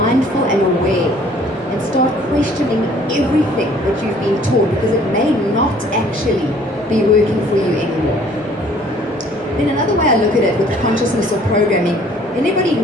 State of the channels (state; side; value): normal; both; correlation 0.56